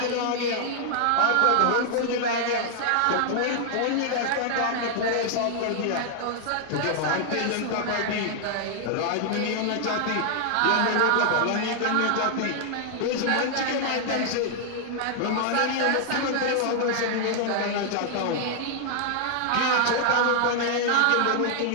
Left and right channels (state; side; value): different; both; correlation -0.01